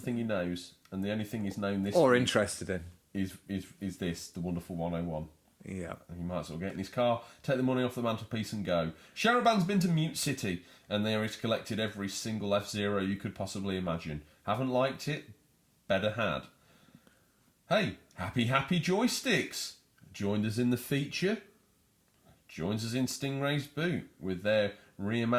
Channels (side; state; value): both; identical; correlation 1.00